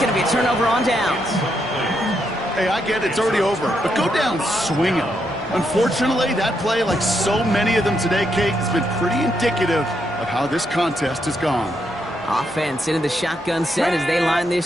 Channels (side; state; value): both; normal; correlation 0.79